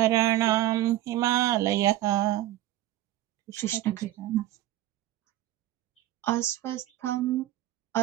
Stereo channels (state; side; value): quieter; left; 14.7 dB